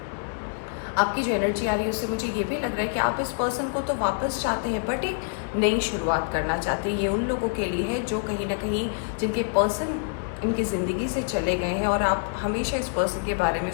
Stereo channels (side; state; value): right; silent; digital silence